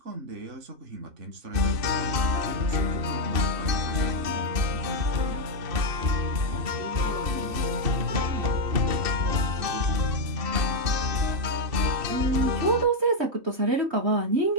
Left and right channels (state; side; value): late; left; 2.7 ms